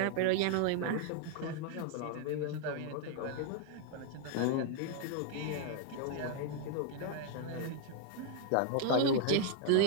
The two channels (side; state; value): both; different; correlation 0.00